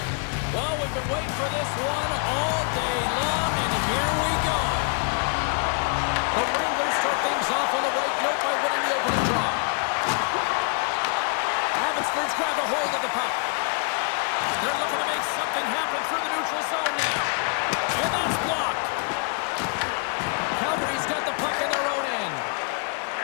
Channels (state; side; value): quieter; right; 38.5 dB